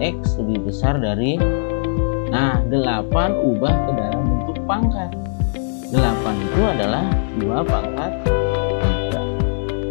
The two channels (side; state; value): right; silent; digital silence